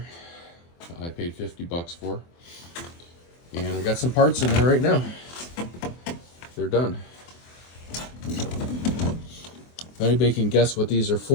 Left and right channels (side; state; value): right; late; 24 ms